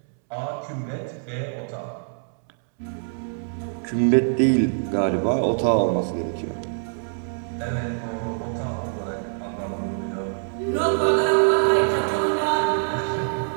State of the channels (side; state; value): left; silent; 61 dB below the other